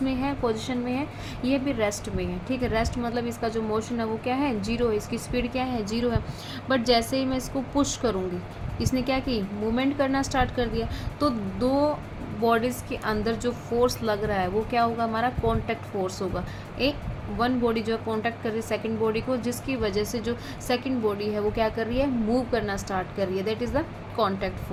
है, पोजीशन में है? ये भी रेस्ट में है। ठीक है, रेस्ट मतलब इसका जो मोशन है वो क्या है? जीरो है। इसकी स्पीड क्या है? जीरो है। बट जैसे ही मैं इसको पुश करूँगी, इसने क्या की? मूवमेंट करना स्टार्ट कर दिया। तो दो बॉडीज़ के अंदर जो फोर्स लग रहा है वो क्या होगा? हमारा कॉन्टैक्ट फोर्स होगा। एक वन बॉडी जो है कॉन्टैक्ट कर रही है सेकंड बॉडी को, जिसकी वजह से जो सेकंड बॉडी है वो क्या कर रही है? मूव करना स्टार्ट कर रही है। That is the contact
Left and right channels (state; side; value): identical; both; correlation 1.00